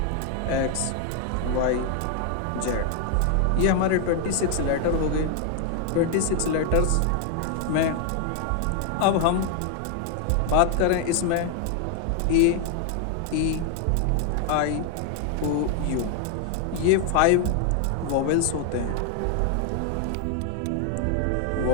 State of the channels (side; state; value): both; different; correlation 0.00